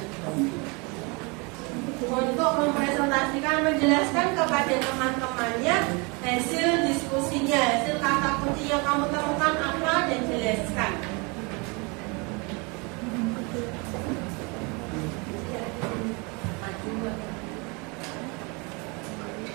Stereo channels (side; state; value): left; quieter; 29.7 dB